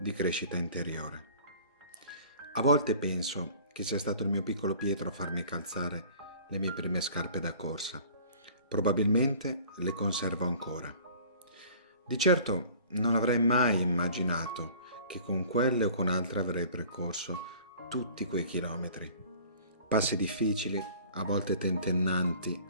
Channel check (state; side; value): inverted; both; correlation -0.47